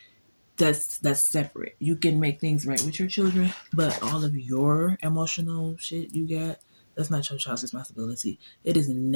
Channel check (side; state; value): both; inverted; correlation -1.00